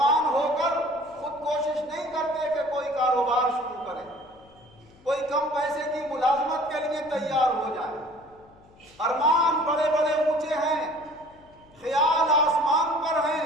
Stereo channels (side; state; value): left; noise; hum, 27 dB below the sound